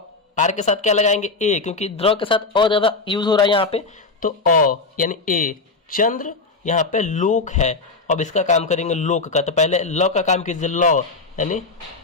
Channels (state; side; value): quieter; right; 3.9 dB